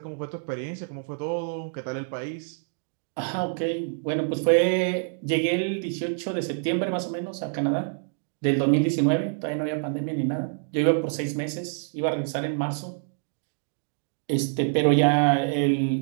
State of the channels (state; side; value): silent; left; digital silence